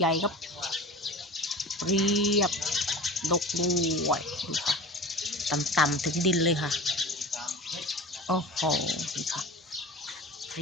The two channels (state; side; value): normal; both; correlation 0.35